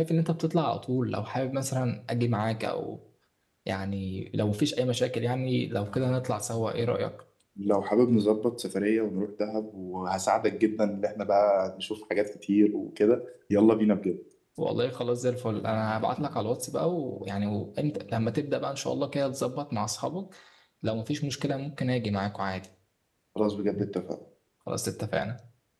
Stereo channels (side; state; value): both; identical; correlation 1.00